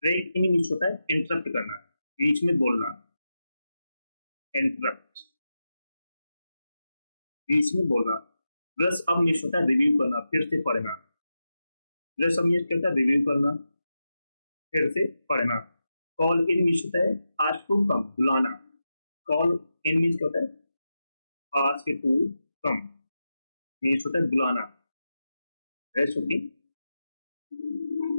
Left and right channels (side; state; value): both; inverted; correlation -0.90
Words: ब्रेक इन मीन्स होता है इंटरप्ट करना, बीच में बोलना, इंटरप्ट, बीच में बोलना। ब्रश अप मीन्स होता है रिव्यू करना, फिर से पढ़ना। ब्रश अप मीन्स क्या होता है? रिव्यू करना, फिर से पढ़ना। कॉल इन मीन्स होता है आस्क टू कम, बुलाना। कॉल इन मीन्स क्या होता है? आस्क टू कम मीन्स होता है बुलाना। Rest okay.